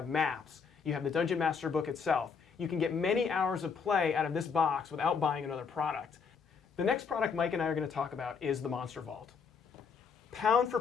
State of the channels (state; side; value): quieter; right; 5.8 dB